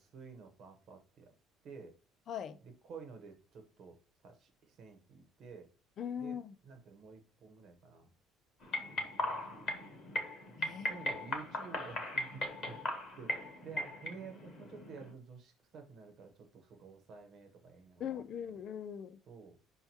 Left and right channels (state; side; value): normal; both; correlation 0.67